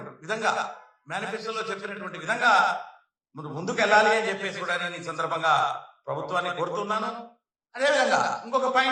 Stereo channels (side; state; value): both; identical; correlation 1.00